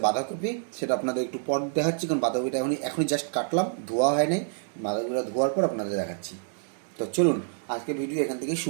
বাঁধাকপি। সেটা আপনাদের একটু পর দেখাচ্ছি, কারণ বাঁধাকপিটা এখনই জাস্ট কাটলাম, ধোয়া হয় নাই। বাঁধাকপিটা ধোয়ার পর আপনাদের দেখাচ্ছি। তো চলুন আজকে ভিডিও এখান থেকে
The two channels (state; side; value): silent; left; digital silence